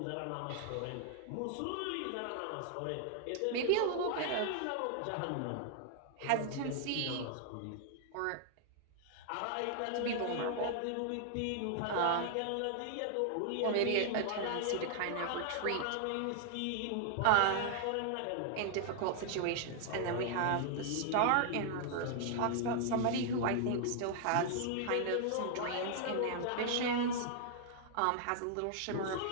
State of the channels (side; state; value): both; different; correlation -0.01